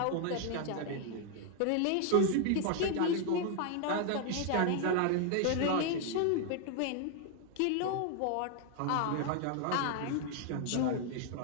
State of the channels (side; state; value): both; different; correlation 0.00